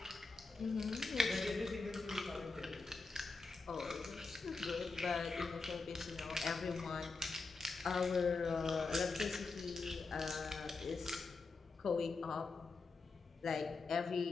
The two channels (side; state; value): right; quieter; 4.0 dB